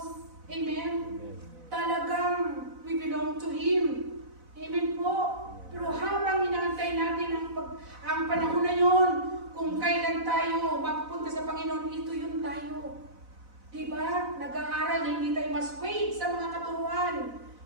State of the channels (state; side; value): late; left; 4.0 ms